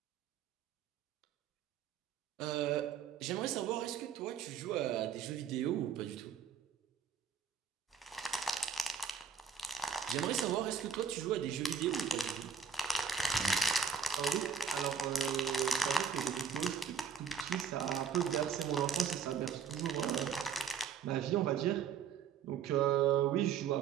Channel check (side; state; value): left; quieter; 6.8 dB